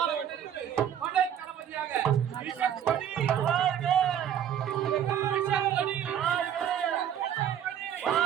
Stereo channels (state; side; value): quieter; left; 9.5 dB